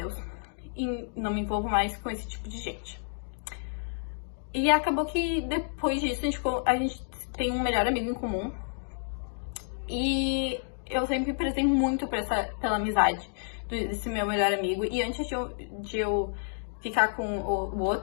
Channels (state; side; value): silent; right; digital silence